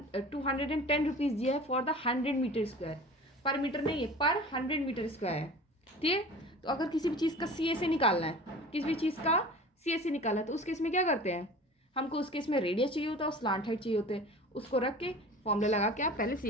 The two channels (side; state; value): both; normal; correlation 0.40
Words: रुपीज़ दिया है फॉर द 100 मीटर स्क्वायर, पर मीटर नहीं है, पर 100 मीटर स्क्वायर है, ठीक है। तो अगर किसी भी चीज़ का CSA निकालना है, किसी भी चीज़ का CSA निकालना है, तो उस केस में क्या करते हैं, हमको उस केस में रेडियस चाहिए होता है और स्लांट हाइट चाहिए होते हैं, उसको रख के फॉर्मूला लगा के आप पहले